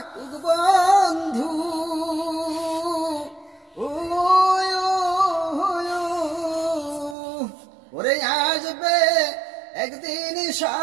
বন্ধু, ওরে আসবে একদিন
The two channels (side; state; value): left; drops out; at 7.2 s